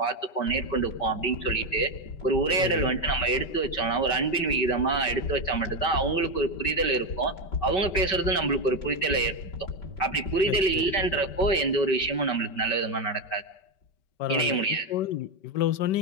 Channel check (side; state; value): right; late; 5.2 ms